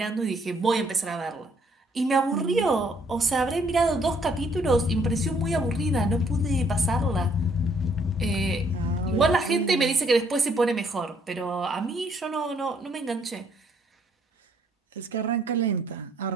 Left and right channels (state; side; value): normal; both; correlation 0.66